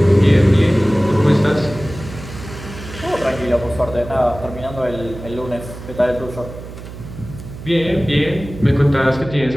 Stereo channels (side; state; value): right; noise; hum, 13 dB below the sound